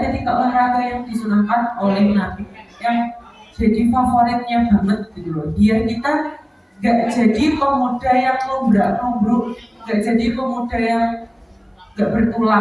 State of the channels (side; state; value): both; identical; correlation 1.00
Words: 3 olahraga yang disunahkan oleh Nabi yang jadi favoritnya banget gitu loh. Biar kita gak jadi pemuda yang lumbruk, gak jadi pemuda yang gak